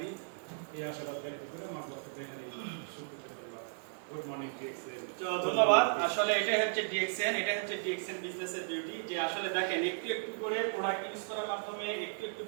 এই আশাবাদ ব্যক্ত করে আমার বক্তব্য গুড মর্নিং ডিএক্সএন। তো ধন্যবাদ। আসলে এটাই হচ্ছে ডিএক্সএন, এটাই হচ্ছে ডিএক্সএন বিজনেসের বিউটি, যে আসলে দেখেন একটু একটু করে প্রোডাক্ট ইউজ করার মাধ্যমে, একটু একটু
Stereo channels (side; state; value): left; silent; digital silence